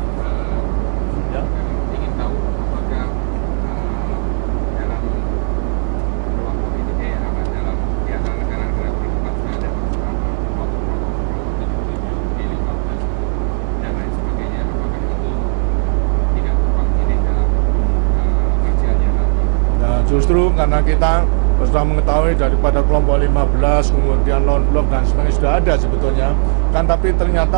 Karena kita sudah mengetahui daripada kelompok 15, kemudian non-blok dan sebagainya sudah ada sebetulnya kan, tapi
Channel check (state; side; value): silent; left; 56 dB below the other